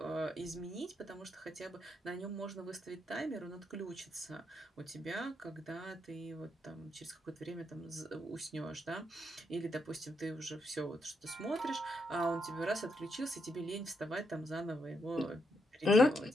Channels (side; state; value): both; normal; correlation 0.79